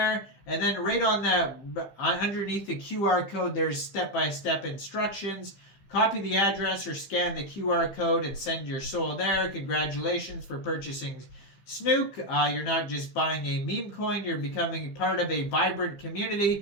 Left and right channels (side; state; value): right; late; 15 ms